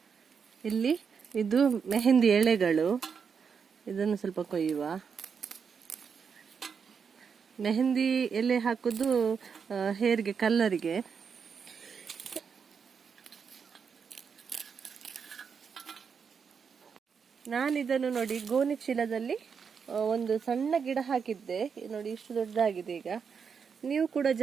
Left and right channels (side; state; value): left; quieter; 6.3 dB